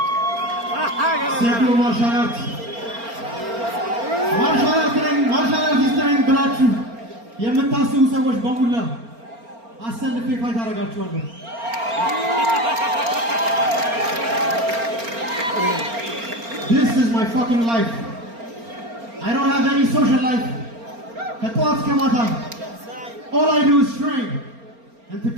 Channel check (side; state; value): left; late; 4.3 ms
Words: Sergio martial arts. Martial arts is training ብላችሁ የምታስቡ ሰዎች በሙላ አሰልፌ ፋይት አደርጋችኋለሁ This is my fucking life. I don't have any social life. All I do is train. And to